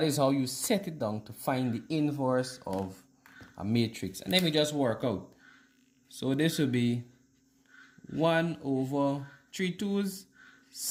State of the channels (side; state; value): both; identical; correlation 1.00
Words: how you set it down to find the inverse of a matrix. And then we just work out. So this will be 1 over 3 2's